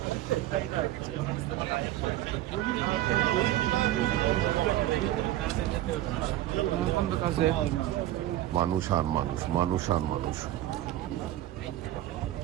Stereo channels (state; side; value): quieter; left; 14.2 dB